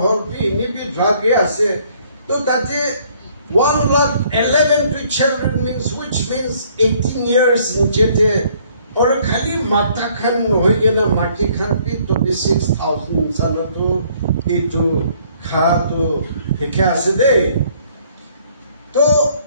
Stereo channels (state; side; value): inverted; both; correlation -0.62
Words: bi, ni bi drug ase. So that 1,11,000 children means, which means 18 years in jete. और खाली माता खान होइए ना माटी खान भी 26,000 साल तो इतो खा तो क्या से दे तो